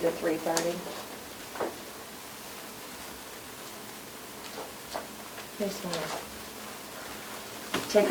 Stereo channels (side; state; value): both; identical; correlation 1.00